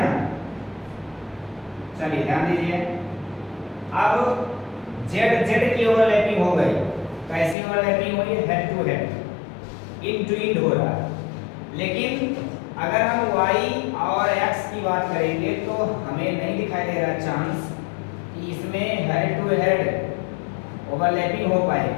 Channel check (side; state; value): right; drops out; at 7.6 s